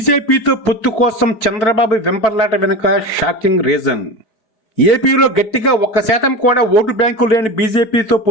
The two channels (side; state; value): right; late; 4.6 ms